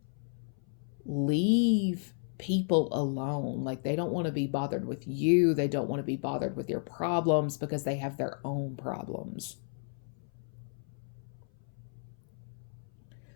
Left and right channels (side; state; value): right; silent; 56 dB below the other